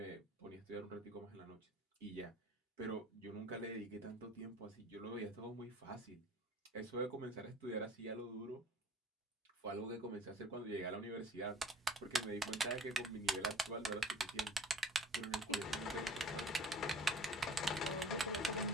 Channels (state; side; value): normal; both; correlation 0.45